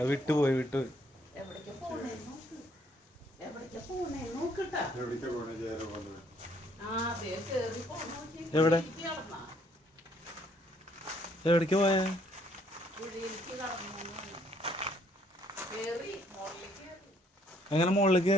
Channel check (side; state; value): both; normal; correlation 0.66